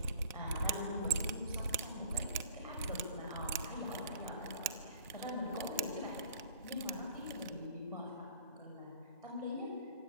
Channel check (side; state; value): both; inverted; correlation -0.50